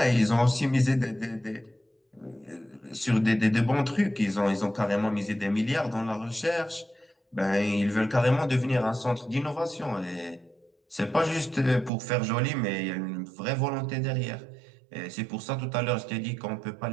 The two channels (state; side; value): drops out; left; at 11.9 s